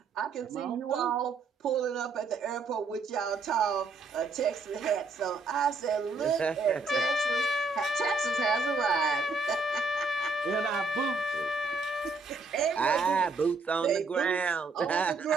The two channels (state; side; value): quieter; left; 3.9 dB